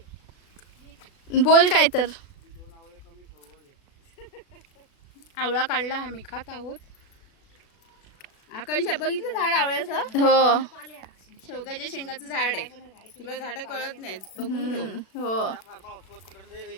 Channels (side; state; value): right; late; 36 ms